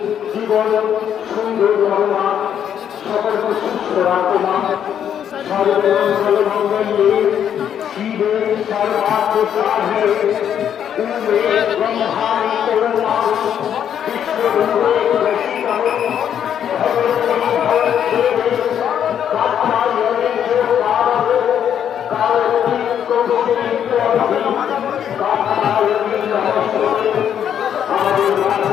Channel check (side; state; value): right; quieter; 9.2 dB